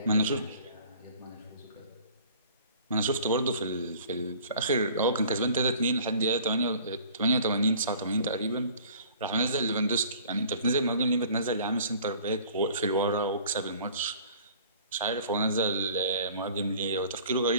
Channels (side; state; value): both; inverted; correlation -0.50